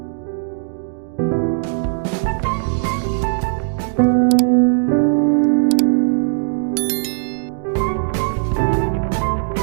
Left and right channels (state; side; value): silent; left; 67 dB below the other